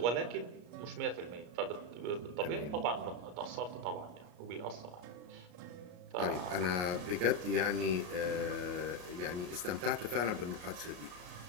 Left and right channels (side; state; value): left; late; 34 ms